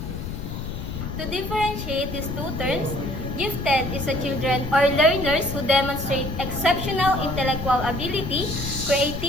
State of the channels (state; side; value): noise; left; rumble, 6 dB below the sound